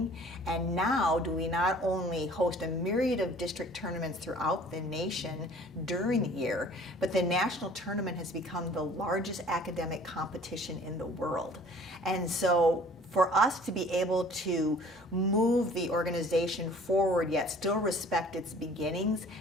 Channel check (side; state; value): both; normal; correlation 0.51